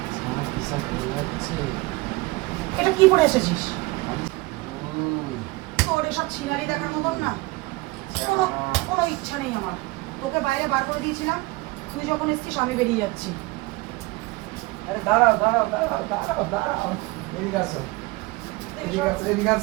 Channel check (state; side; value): quieter; left; 22.5 dB